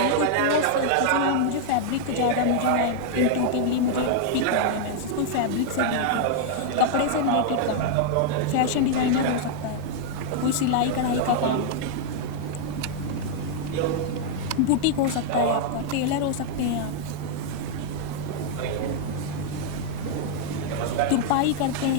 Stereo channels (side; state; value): both; different; correlation -0.01